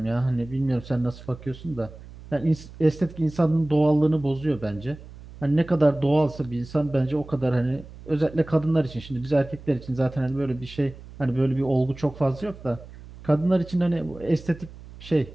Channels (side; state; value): right; noise; hum, 17 dB below the sound